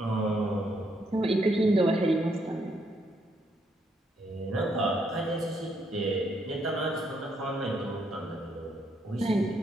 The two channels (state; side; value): normal; both; correlation 0.74